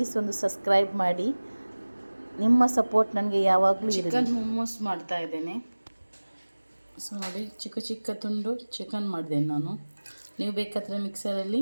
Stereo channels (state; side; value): inverted; both; correlation -1.00